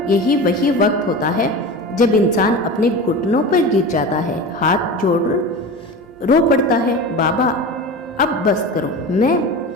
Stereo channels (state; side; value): normal; both; correlation 0.30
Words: यही वही वक्त होता है जब इंसान अपने घुटनों पर गिर जाता है, हाथ जोड़ रो पड़ता है, बाबा अब बस करो, मैं